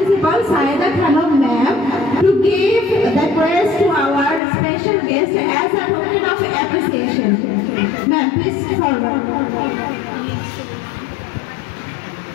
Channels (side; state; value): right; drops out; at 4.4 s